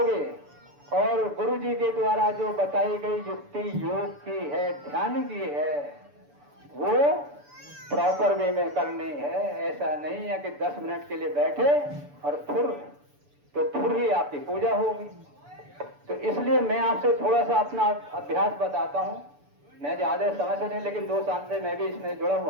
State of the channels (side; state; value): left; late; 6.9 ms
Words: और गुरु जी के द्वारा जो बताई गई युक्ति योग की है, ध्यान की है, वो प्रॉपर वे में करनी है। ऐसा नहीं है कि 10 मिनट के लिए बैठे और फिर ही आपकी पूजा होगी। तो इसलिए मैं आपसे थोड़ा सा अपना अभ्यास बताता हूं। मैं ज्यादा समय से नहीं, लेकिन 2 साल से मैं भी इसमें जुड़ा